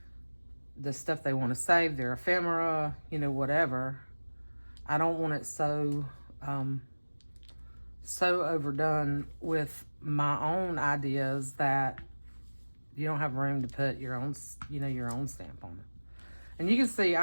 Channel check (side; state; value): both; inverted; correlation -1.00